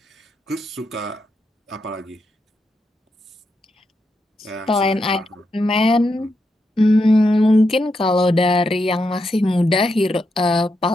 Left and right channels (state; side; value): normal; both; correlation 0.83